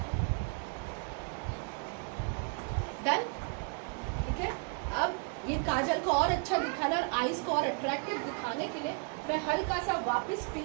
डन, ठीक है। अब ये काजल को और अच्छा दिखाना और आईज को और अट्रैक्टिव दिखाने के लिए मैं हल्का सा वापस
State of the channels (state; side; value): quieter; left; 37.0 dB